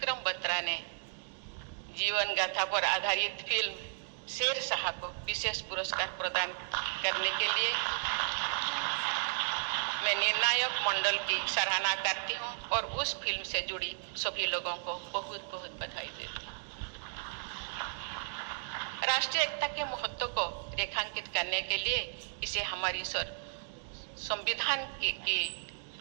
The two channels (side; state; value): left; silent; digital silence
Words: बत्रा ने जीवन गाथा पर आधारित फिल्म शेर शाह को विशेष पुरस्कार प्रदान करने के लिए मैं निर्णायक मंडल की सराहना करती हूँ और उस फिल्म से जुड़ी सभी लोगों को बहुत बहुत बधाई देती हूँ। राष्ट्रीय एकता के महत्व को रेखांकित करने के लिए इसे हमारी संविधान की